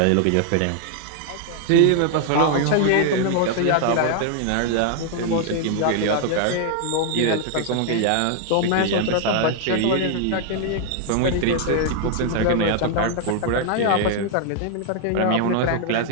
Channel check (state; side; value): different; both; correlation 0.00